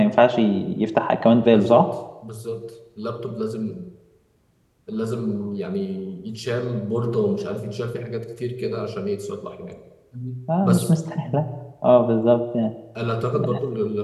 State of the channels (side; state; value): both; identical; correlation 1.00